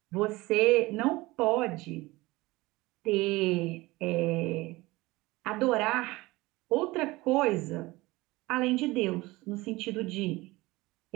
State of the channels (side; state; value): left; quieter; 20.8 dB